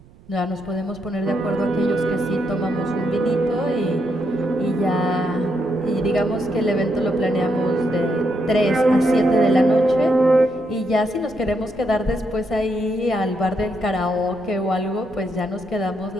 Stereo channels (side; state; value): right; noise; rumble, 25 dB below the sound